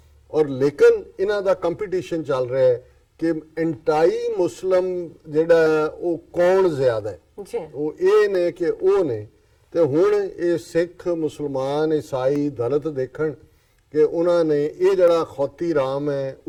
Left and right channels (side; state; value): both; identical; correlation 1.00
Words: ਔਰ ਲੇਕਿਨ ਇਹਨਾਂ ਦਾ ਕੰਪੀਟੀਸ਼ਨ ਚੱਲ ਰਿਹਾ ਹੈ ਕਿ ਐਂਟਾਈ ਮੁਸਲਮ ਜਿਹੜਾ ਹੈ ਉਹ ਕੌਣ ਜ਼ਿਆਦਾ ਹੈ, ਜੀ ਉਹ ਇਹ ਨੇ ਕਿ ਉਹ ਨੇ। ਤੇ ਹੁਣ ਇਹ ਸਿੱਖ, ਮੁਸਲਮਾਨ, ਈਸਾਈ, ਦਲਿਤ ਦੇਖਣ ਕਿ ਉਹਨਾਂ ਨੇ ਇਹ ਜਿਹੜਾ ਖੌਤੀ ਰਾਮ ਹੈ